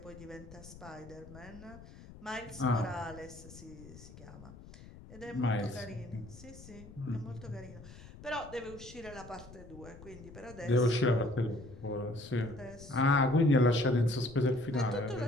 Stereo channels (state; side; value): noise; left; rumble, 17 dB below the sound